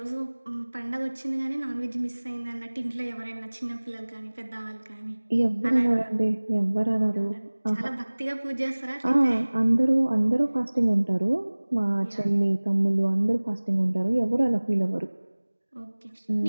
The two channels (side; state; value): both; inverted; correlation -1.00